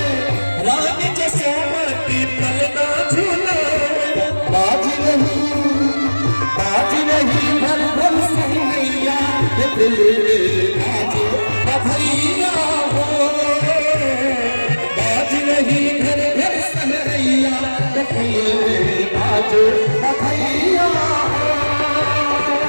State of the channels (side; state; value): both; inverted; correlation -1.00